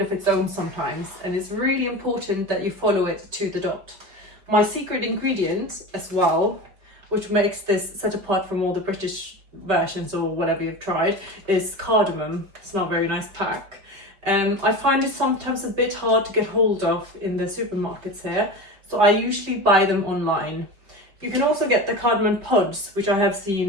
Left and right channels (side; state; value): left; late; 5.2 ms